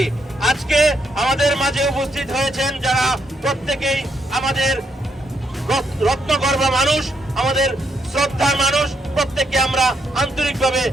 আজকে আমাদের মাঝে উপস্থিত হয়েছেন যারা প্রত্যেকেই আমাদের রত্নগর্ভ মানুষ, আমাদের শ্রদ্ধার মানুষ, প্রত্যেককে আমরা আন্তরিকভাবে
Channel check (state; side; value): normal; both; correlation 0.77